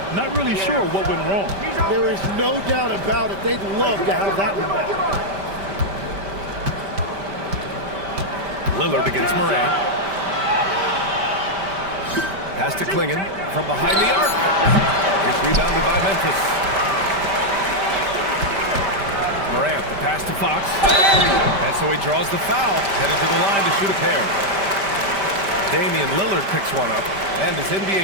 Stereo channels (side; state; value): left; late; 5.1 ms